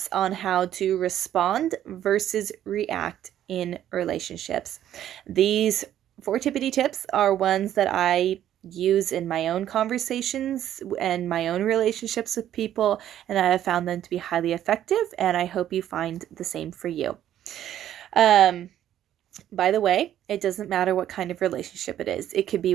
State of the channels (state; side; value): quieter; left; 11.4 dB